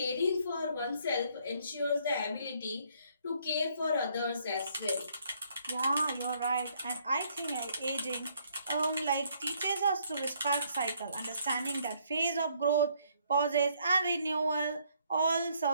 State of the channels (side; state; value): both; inverted; correlation -0.67